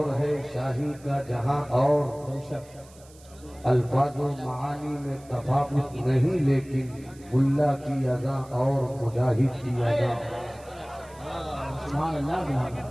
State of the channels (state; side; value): noise; right; hiss, 25 dB below the sound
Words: ہے، شاہی کا جہاں اور، بے شک، الفاظ و معانی میں تفاوت نہیں، لیکن ملا کی اذاں اور مجاہد کی اذاں۔ سبحان اللہ سبحان اللہ۔